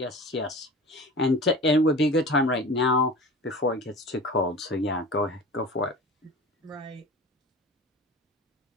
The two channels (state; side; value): normal; both; correlation 0.36